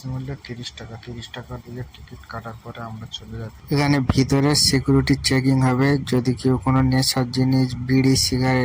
মূল্য 30 টাকা। 30 টাকা দিয়ে টিকিট কাটার পরে আমরা চলে যাচ্ছি। এখানে ভিতরে সিকিউরিটি চেকিং হবে। যদি কেউ কোনো নেশার জিনিস, বিড়ি,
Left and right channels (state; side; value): identical; both; correlation 1.00